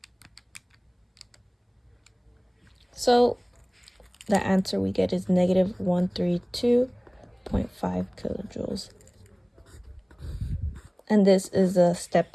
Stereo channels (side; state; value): both; identical; correlation 1.00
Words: So the answer we get is negative 132.5 kilojoules. And this is a